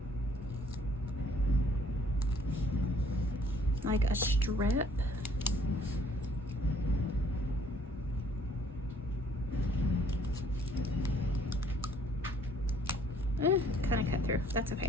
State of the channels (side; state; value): both; normal; correlation 0.61